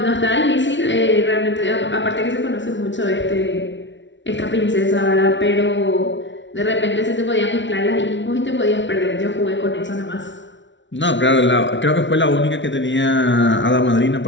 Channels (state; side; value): late; right; 0.54 ms